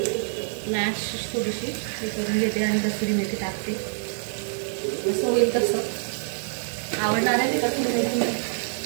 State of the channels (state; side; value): silent; left; digital silence